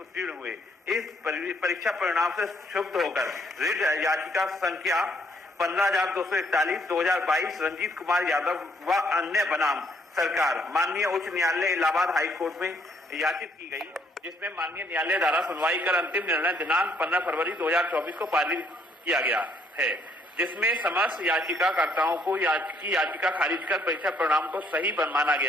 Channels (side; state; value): both; normal; correlation 0.68